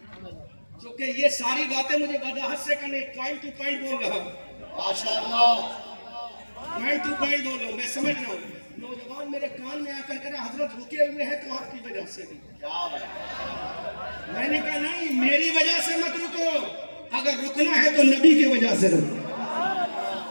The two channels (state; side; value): inverted; both; correlation -1.00